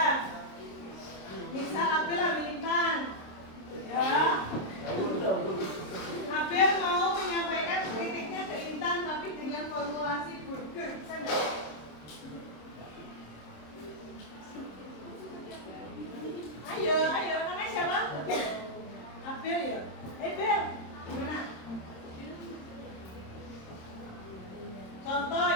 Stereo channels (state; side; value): late; right; 26 ms